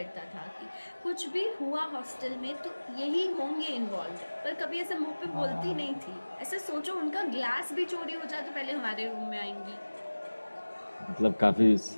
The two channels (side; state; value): both; inverted; correlation -1.00